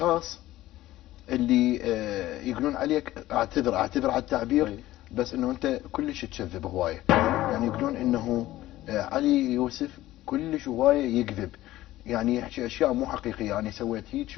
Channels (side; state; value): right; quieter; 15.7 dB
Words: اللي يقولون عليك اعتذر على التعبير، بس انه انت كلش تكذب هواية. يعني يقولون انه علي يوسف كلش هواية يكذب، يعني يحكي اشياء مو حقيقية، يعني سويت هيك